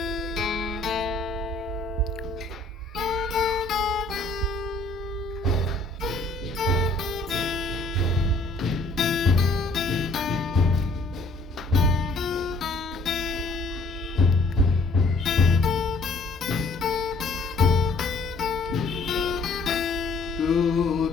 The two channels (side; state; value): right; quieter; 3.1 dB